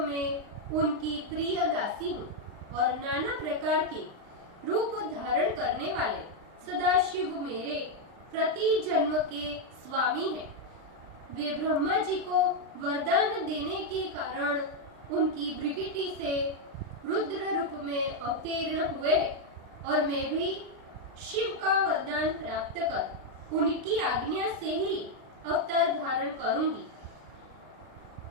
में उनकी प्रिय दासी हूँ और नाना प्रकार के रूप धारण करने वाले सदाशिव मेरे प्रति जन्म के स्वामी हैं। वे ब्रह्मा जी को वरदान देने के कारण उनकी भृकुटी से रुद्र रूप में अवतीर्ण हुए और मैं भी शिव का वरदान प्राप्त कर उनकी आज्ञा से ही अवतार धारण करूंगी।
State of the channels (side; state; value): left; late; 39 ms